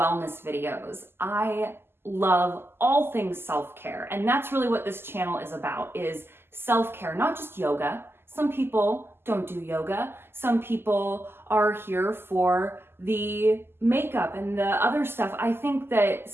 videos. I love all things self-care, and that's really what this channel is about, is self-care, not just yoga. Some people don't do yoga. Some people are here for the makeup and the other stuff. I think that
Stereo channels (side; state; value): left; late; 0.11 ms